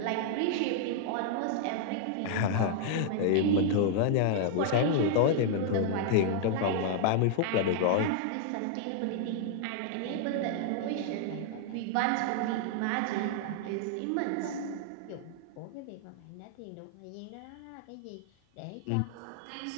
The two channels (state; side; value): different; both; correlation -0.01